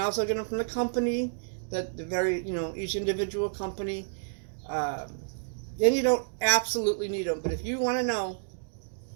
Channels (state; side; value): silent; left; digital silence